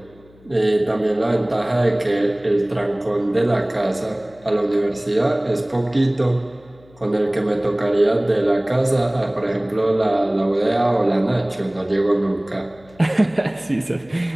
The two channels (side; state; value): left; noise; hum, 27 dB below the sound